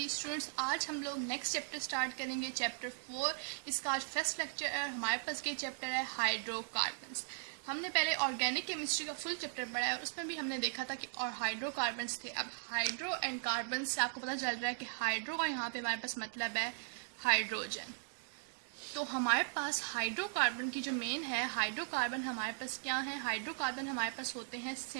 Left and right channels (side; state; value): left; silent; digital silence